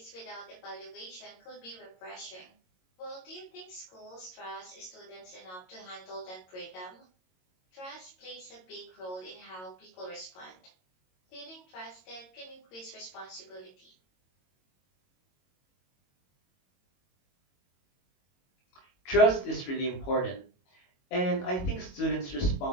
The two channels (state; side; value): late; right; 22 ms